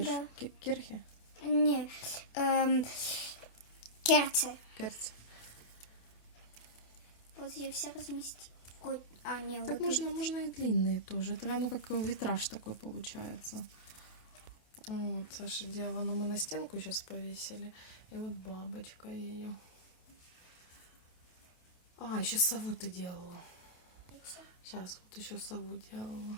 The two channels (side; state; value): right; late; 28 ms